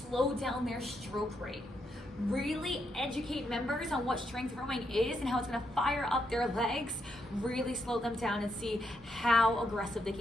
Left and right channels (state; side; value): normal; both; correlation 0.79